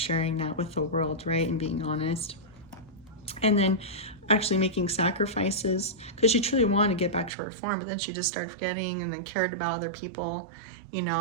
that with the world, right? And being honest. And then actually making sacrifices because she truly wanted to get back to her form, but then she just started forgetting and then cared about other people, you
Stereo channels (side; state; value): left; drops out; at 7.3 s